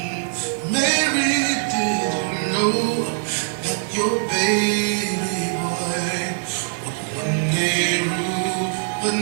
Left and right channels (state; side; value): silent; left; digital silence